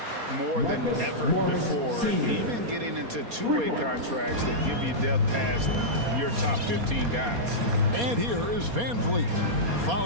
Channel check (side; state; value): left; late; 4.2 ms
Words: more than ever before, and even getting into two-way contracts that give you depth past your top 15 guys. And here is Van Vliet